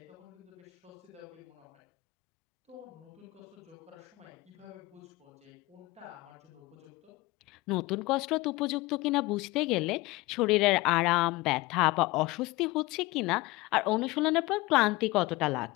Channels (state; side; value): quieter; right; 21.2 dB